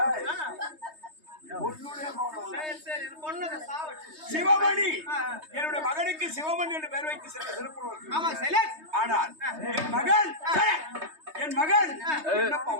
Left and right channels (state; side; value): late; left; 3.2 ms